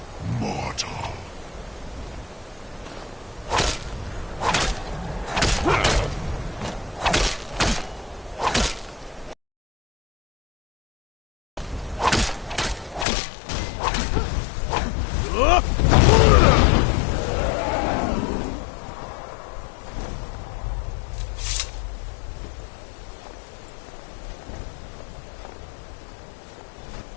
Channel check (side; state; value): right; drops out; at 13.1 s